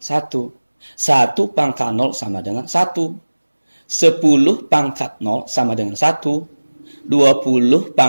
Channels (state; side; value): inverted; both; correlation -1.00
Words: 1 pangkat 0 sama dengan 1. 10 pangkat 0 sama dengan 1. 20